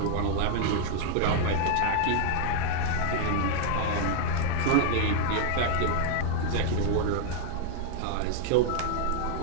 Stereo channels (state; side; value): different; both; correlation -0.01